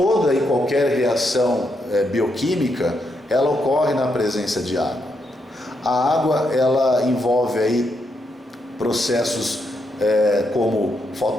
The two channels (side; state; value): both; normal; correlation 0.80